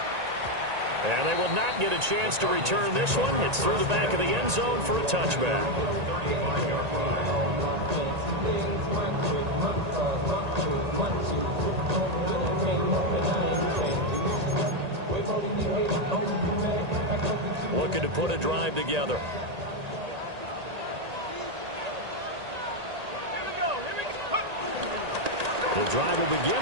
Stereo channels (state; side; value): late; left; 1.8 ms